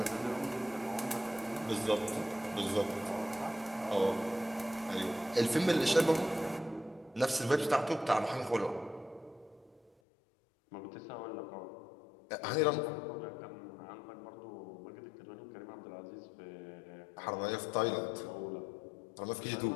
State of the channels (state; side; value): drops out; right; at 9.9 s